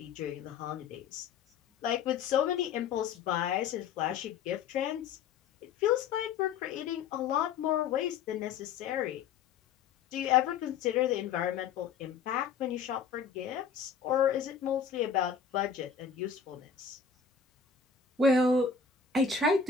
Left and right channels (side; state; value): right; quieter; 6.4 dB